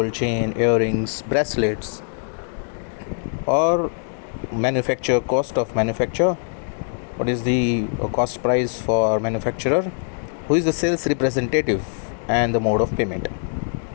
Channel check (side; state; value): right; silent; digital silence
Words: chain, earrings, bracelets, or manufacture cost of manufacture, what is the cost price for manufacturer, who is the sales representative, and the mode of payment.